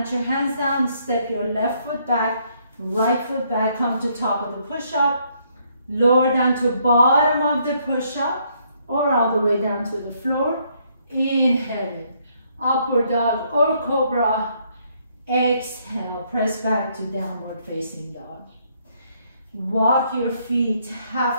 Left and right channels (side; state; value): both; inverted; correlation -0.70